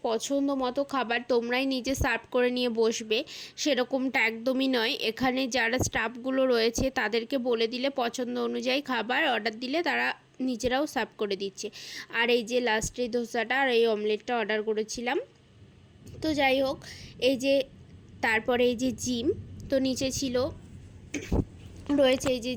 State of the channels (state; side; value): identical; both; correlation 1.00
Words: পছন্দ মতো খাবার তোমরাই নিজে সার্ভ করে নিয়ে বসবে, সেরকমটা একদমই নয়। এখানে যারা স্টাফগুলো রয়েছে তাদেরকে বলে দিলে পছন্দ অনুযায়ী খাবার অর্ডার দিলে তারা নিজেরাও সার্ভ করে দিচ্ছে। আর এই যে লাস্টে ধোসাটা আর এই অমলেটটা অর্ডার করেছিলাম। তো যাই হোক, এই যে তারপরে এই যে জিম, তো নিচে ছিল রয়েছে এই যে